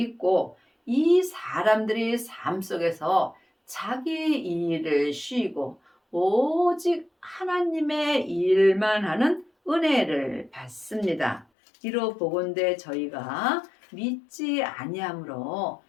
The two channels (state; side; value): drops out; right; at 11.5 s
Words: 이 사람들이 삶 속에서 자기 일을 쉬고 오직 하나님의 일만 하는 은혜를 받습니다. 이로 보건대 저희가 믿지 아니함으로